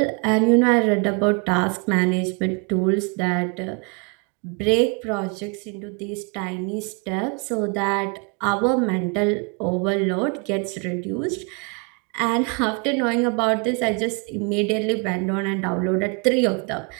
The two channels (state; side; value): quieter; left; 34.9 dB